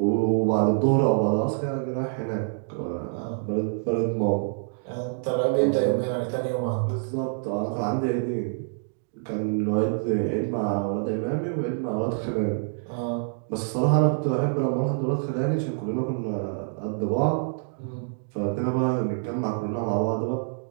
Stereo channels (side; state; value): left; silent; digital silence